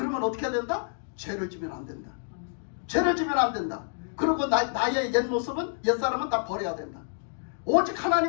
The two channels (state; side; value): silent; right; digital silence